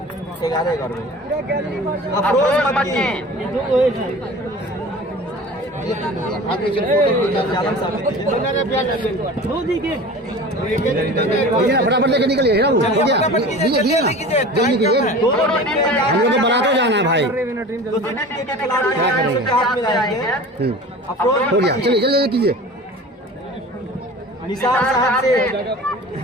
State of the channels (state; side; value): normal; both; correlation 0.38